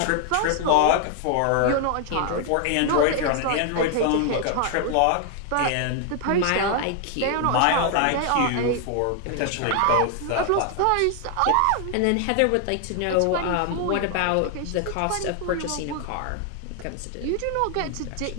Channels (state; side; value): different; both; correlation 0.00